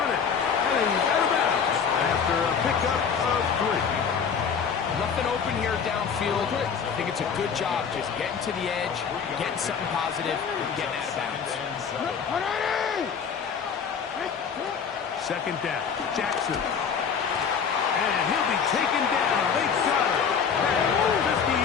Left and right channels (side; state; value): right; quieter; 6.7 dB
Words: it, and he's out of bounds after a pickup of 3. Nothing open here downfield. I think it's a good job just getting to the edge, getting something positive, and getting out of bounds. Second down, Jackson. And he'll be taken down. They got it at the